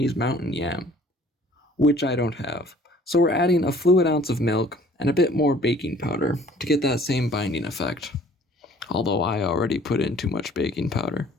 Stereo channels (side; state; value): both; normal; correlation 0.54